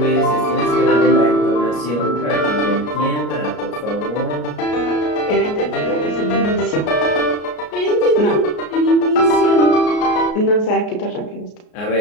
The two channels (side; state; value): right; late; 33 ms